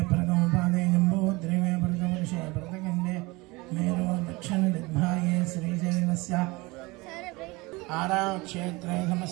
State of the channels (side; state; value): left; quieter; 23.6 dB